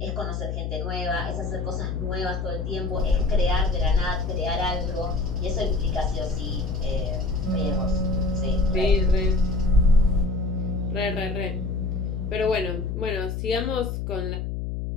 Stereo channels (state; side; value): noise; left; hum, 3 dB below the sound